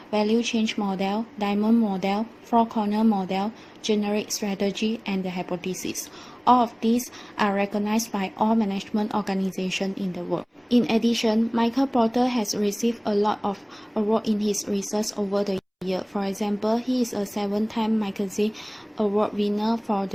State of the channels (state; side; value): identical; both; correlation 1.00